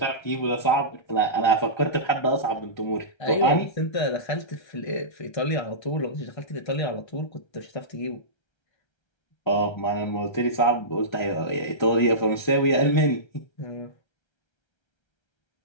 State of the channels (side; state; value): right; late; 1.3 ms